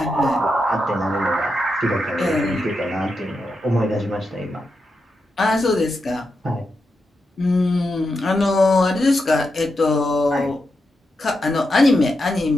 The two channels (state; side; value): normal; both; correlation 0.86